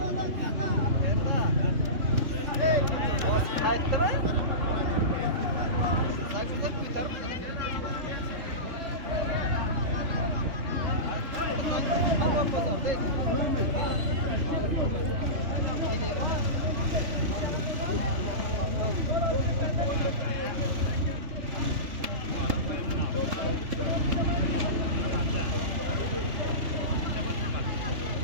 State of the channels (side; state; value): left; late; 3.3 ms